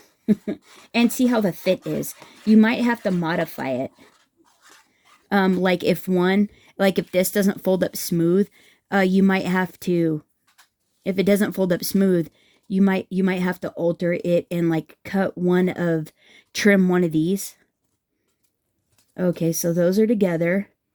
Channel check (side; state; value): both; identical; correlation 1.00